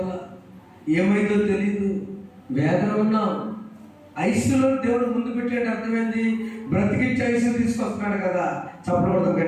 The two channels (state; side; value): identical; both; correlation 1.00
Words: ఏమైందో తెలియదు, వేదన ఉన్నాం. ఐసీయూలో దేవుడు ముందు పెట్టేట అర్థమైంది, బ్రతికించి ఐసీయూ తీసుకొస్తున్నాడు కదా. చప్పడం